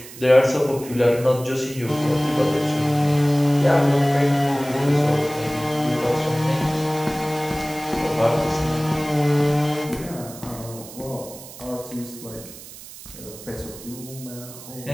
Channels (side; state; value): right; noise; hiss, 16 dB below the sound